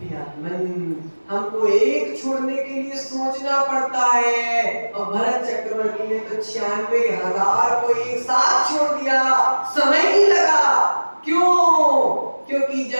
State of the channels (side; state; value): both; inverted; correlation -1.00